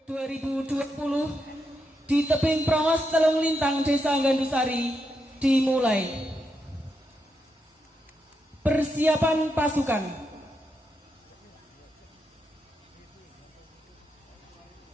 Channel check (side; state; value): both; normal; correlation 0.83